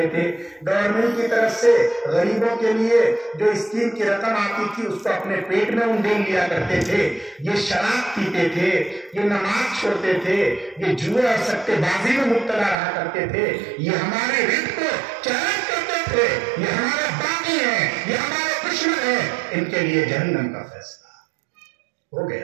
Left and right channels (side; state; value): left; drops out; at 12.8 s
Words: تھے, گورنمنٹ کی طرف سے غریبوں کے لیے جو اسکیم کی رقم آتی تھی اس کو اپنے پیٹ میں انڈیل لیا کرتے تھے, یہ شراب پیتے تھے, یہ نماز چھوڑتے تھے, یہ جوئے اور سٹے بازی میں مبتلا رہا کرتے تھے, یہ ہمارے رزق کو چیلنج کرتے تھے, یہ ہمارے باغی ہیں, یہ ہمارے دشمن ہیں. ان کے لیے جہنم کا فیصلہ ہو